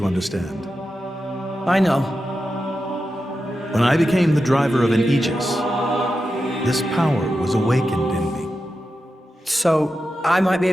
understand. I know. When I became the driver of an Aegis, this power was awakened in me. So, I might be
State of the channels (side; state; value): both; normal; correlation 0.90